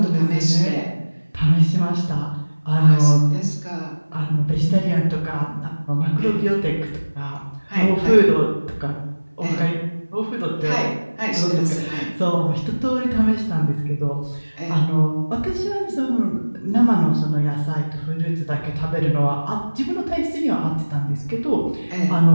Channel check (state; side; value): inverted; both; correlation -1.00